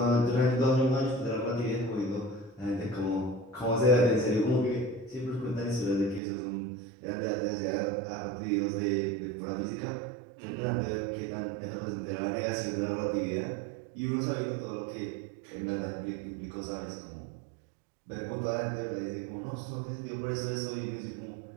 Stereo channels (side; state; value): left; drops out; at 6.2 s